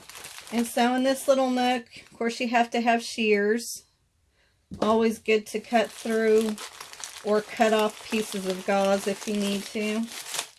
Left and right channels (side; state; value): both; identical; correlation 1.00